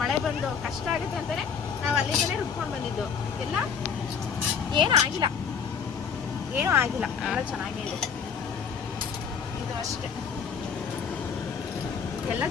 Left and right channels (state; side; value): quieter; right; 6.6 dB